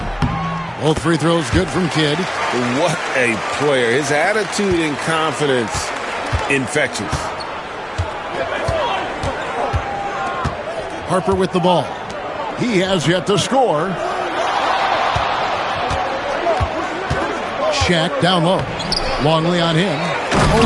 Both free throws good from Kidd. What a player. His attitude and confidence infectious. Harper with the ball. He has yet to score. Shaq down low. Longley on him.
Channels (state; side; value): identical; both; correlation 1.00